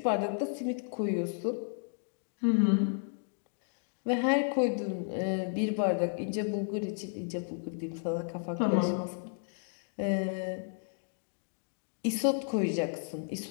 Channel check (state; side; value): silent; right; digital silence